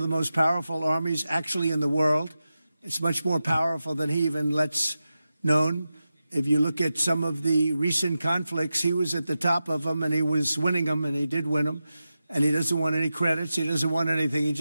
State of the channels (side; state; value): both; inverted; correlation -0.92